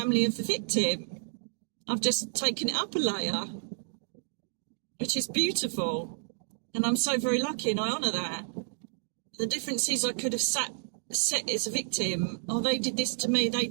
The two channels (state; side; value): silent; left; digital silence